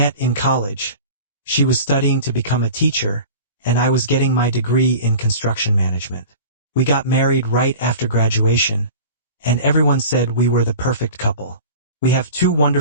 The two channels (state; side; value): inverted; both; correlation -0.38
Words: in college. She was studying to become a teacher, and I was getting my degree in construction management. We got married right after graduation, and everyone said we were the perfect couple. We have 2